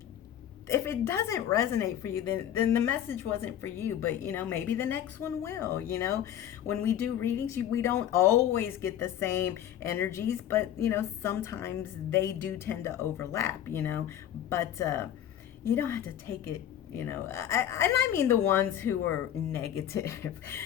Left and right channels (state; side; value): quieter; right; 10.7 dB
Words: if it doesn't resonate for you, then the message wasn't for you. But maybe the next one will. When we do readings, we don't always get the same energies, but sometimes they do tend to overlap. But you don't have to take it. I mean the ones who are negative.